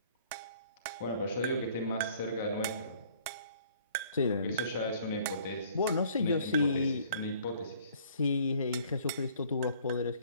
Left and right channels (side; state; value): both; inverted; correlation -0.57